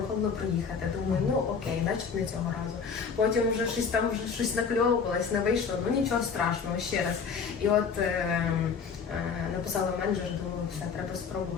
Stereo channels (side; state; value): right; quieter; 5.9 dB